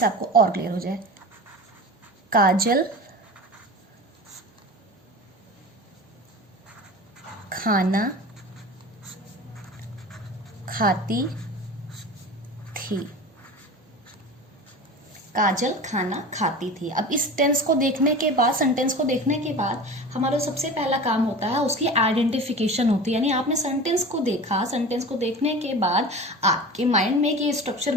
आपको और क्लियर हो जाए। काजल खाना खाती थी। काजल खाना खाती थी। अब इस टेंस को देखने के बाद, सेंटेंस को देखने के बाद हमारा सबसे पहला काम होता है उसकी आइडेंटिफिकेशन होती है। यानी आपने सेंटेंस को देखा, सेंटेंस को देखने के बाद आपके माइंड में एक ये स्ट्रक्चर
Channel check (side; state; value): both; normal; correlation 0.33